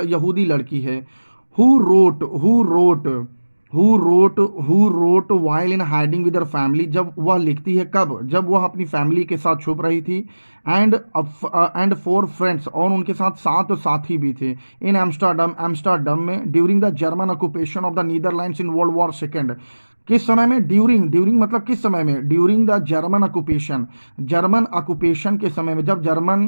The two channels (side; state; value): both; inverted; correlation -1.00